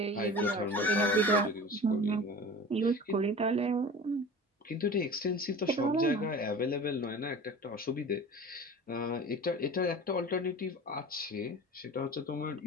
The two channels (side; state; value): both; normal; correlation 0.37